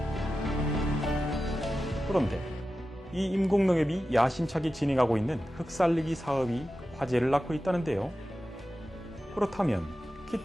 그런데 이 임곡농협이 야심차게 진행하고 있는 흙살리기 사업이 화제를 낳고 있다는데요. 그렇다면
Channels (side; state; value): both; normal; correlation 0.93